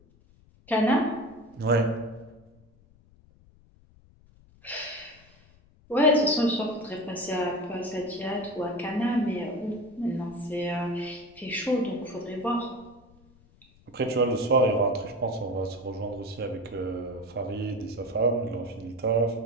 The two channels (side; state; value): left; noise; rumble, 28 dB below the sound